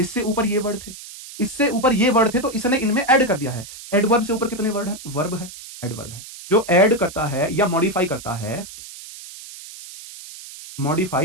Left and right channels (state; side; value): noise; right; hiss, 15 dB below the sound